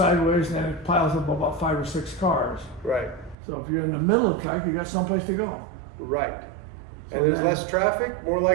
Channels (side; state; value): left; drops out; at 3.4 s